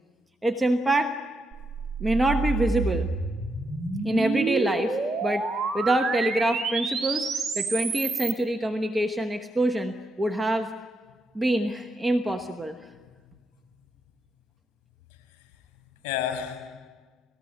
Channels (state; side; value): normal; both; correlation 0.81